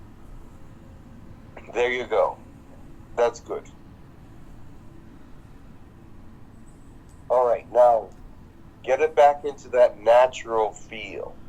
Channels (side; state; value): both; identical; correlation 1.00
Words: There you go. That's good. All right, now get it back into that natural feel.